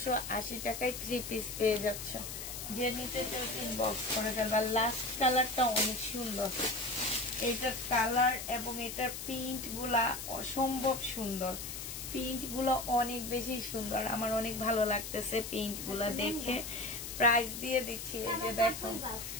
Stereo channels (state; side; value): noise; left; hiss, 7 dB below the sound